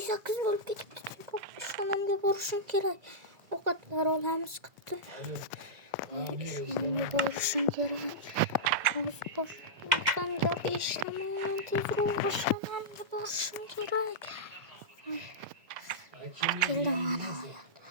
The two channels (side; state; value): left; late; 2.0 ms